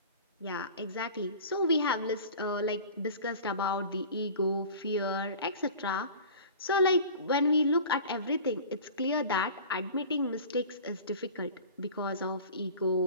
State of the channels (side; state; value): both; inverted; correlation -0.40